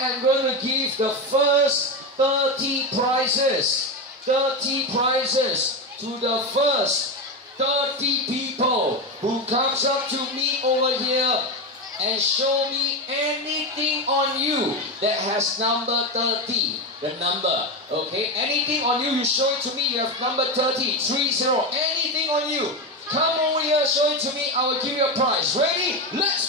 am going to give the first 30 prizes to the first 30 people who comes up to me over here and show me anything on you that has number 30, the number, okay? Anything on you, you show it to me, you have number 30, anything on you. Come over here, show it to me, I will give you a prize. Ready? Let's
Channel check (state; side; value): normal; both; correlation 0.14